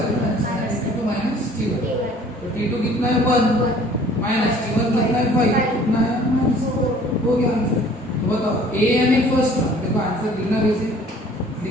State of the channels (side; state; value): both; normal; correlation 0.52